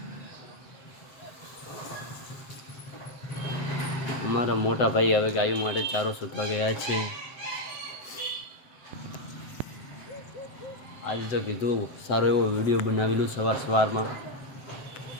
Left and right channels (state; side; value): late; right; 7.8 ms